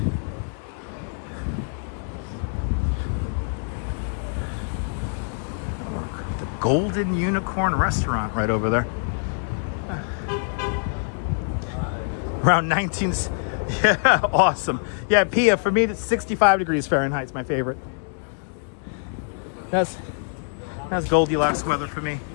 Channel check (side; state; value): right; silent; digital silence